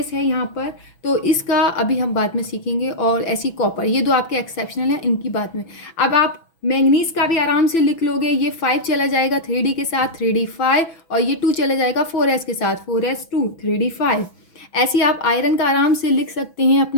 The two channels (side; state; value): right; late; 6.1 ms